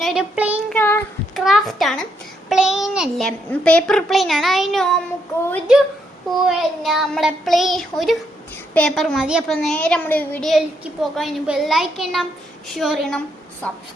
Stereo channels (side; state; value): both; normal; correlation 0.76